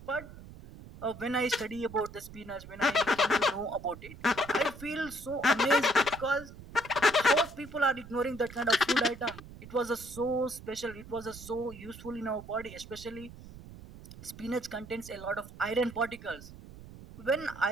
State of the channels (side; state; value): right; noise; rumble, 16 dB below the sound